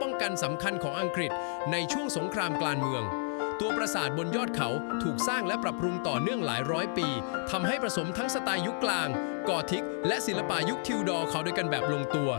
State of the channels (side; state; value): right; silent; digital silence